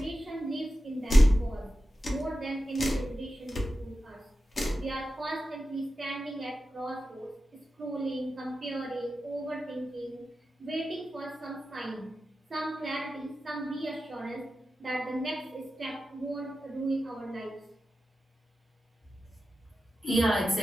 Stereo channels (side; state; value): both; normal; correlation 0.92